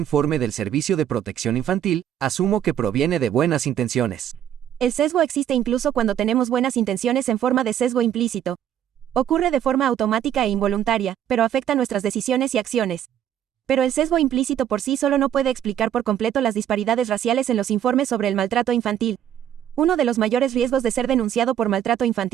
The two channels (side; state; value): left; quieter; 10.3 dB